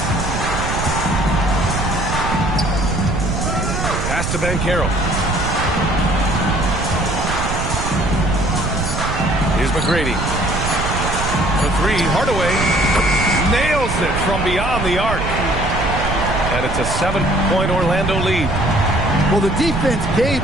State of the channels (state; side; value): noise; right; rumble, 3 dB below the sound